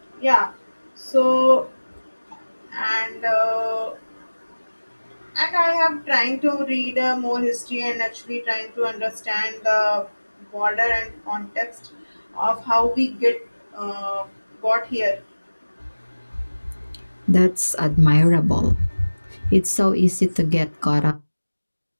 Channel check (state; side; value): inverted; both; correlation -1.00